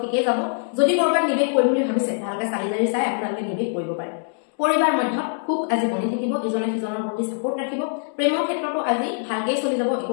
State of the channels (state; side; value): silent; right; 63 dB below the other